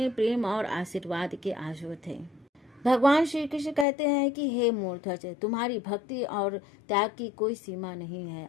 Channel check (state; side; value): drops out; right; at 3.9 s